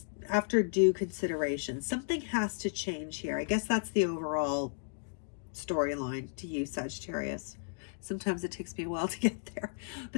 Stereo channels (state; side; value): silent; right; digital silence